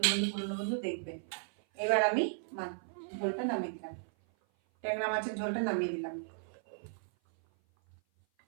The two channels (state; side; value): silent; left; 54 dB below the other